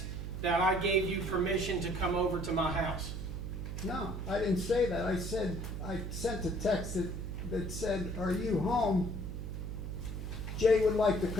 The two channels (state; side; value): noise; right; hum, 5 dB below the sound